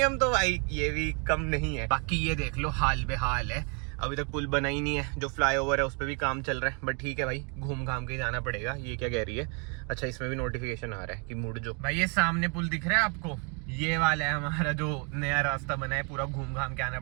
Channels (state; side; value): quieter; left; 35.8 dB